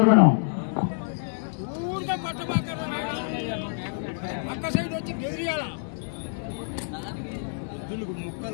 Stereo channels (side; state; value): right; silent; 60 dB below the other